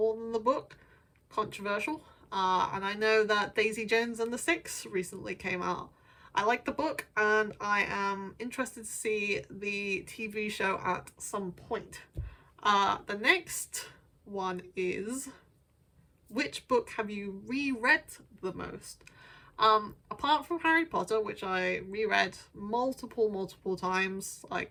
than the book. Controversial. And I know that Daisy Jones and the Six recently came out. I like the book and I am interested to see the TV show at some point. The next one is, which book have you reread the most? Apart from Harry Potter, which I reread multiple times,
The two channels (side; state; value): both; identical; correlation 1.00